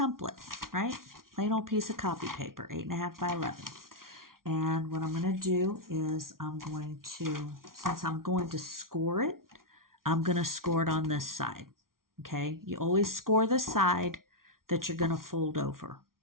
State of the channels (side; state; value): left; late; 0.92 ms